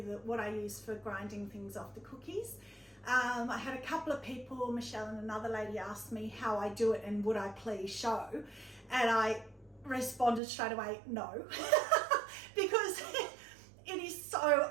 what I use for grinding things off the cookies. I had a couple of people, Michelle and another lady, asked me how I do it and would I please show, and I responded straight away no because it is so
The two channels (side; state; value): left; drops out; at 10.4 s